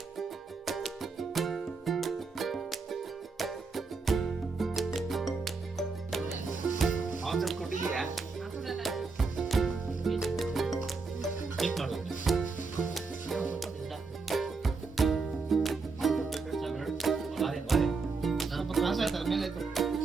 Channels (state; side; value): quieter; left; 4.4 dB